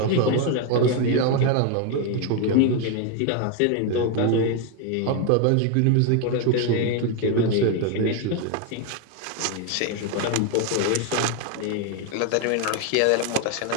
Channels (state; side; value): different; both; correlation 0.01